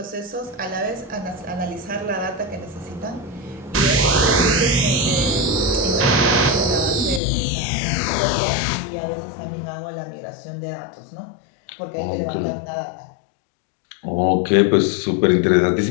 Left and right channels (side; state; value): right; drops out; at 7.2 s